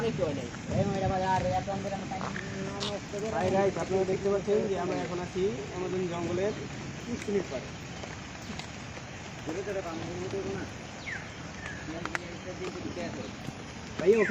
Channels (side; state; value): both; identical; correlation 1.00